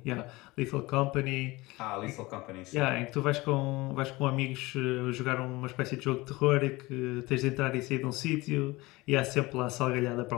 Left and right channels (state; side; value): quieter; right; 21.3 dB